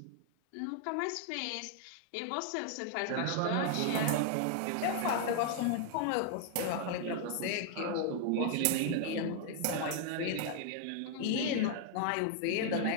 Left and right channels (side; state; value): both; different; correlation 0.00